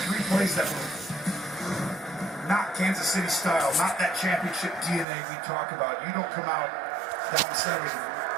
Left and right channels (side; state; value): left; drops out; at 5.1 s